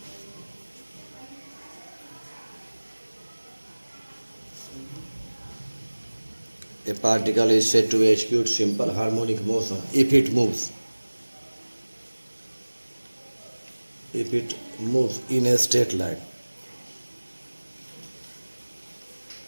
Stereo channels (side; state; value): both; inverted; correlation -1.00